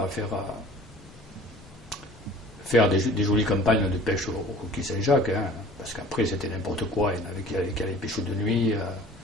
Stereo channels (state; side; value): normal; both; correlation 0.46